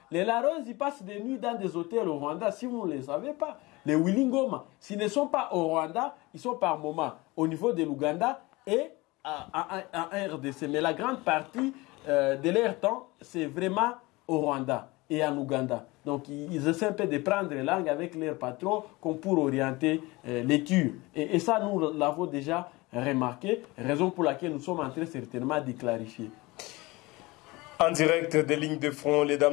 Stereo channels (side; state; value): right; quieter; 22.4 dB